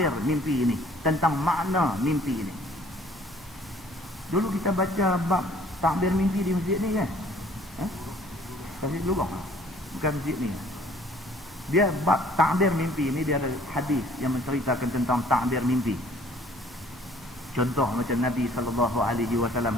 mimpi ini, tentang makna mimpi ini. Dulu kita baca bab takbir mimpi di masjid ni kan? Masjid Lubang. Bukan masjid ni. Dia bab takbir mimpi ni, dia ada hadis yang menceritakan tentang takbir mimpi. Contoh macam Nabi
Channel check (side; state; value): both; normal; correlation 0.56